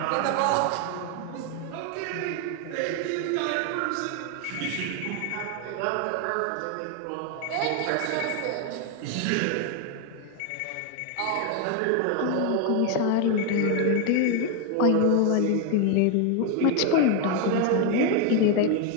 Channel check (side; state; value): both; different; correlation 0.01